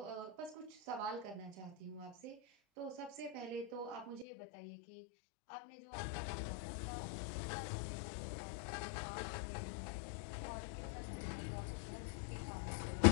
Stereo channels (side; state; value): right; drops out; at 4.2 s